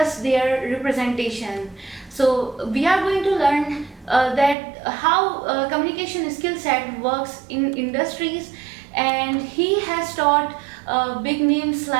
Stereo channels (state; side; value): drops out; left; at 4.5 s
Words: their representation. So we are going to learn that how communication skill set works in industries, and he has taught big names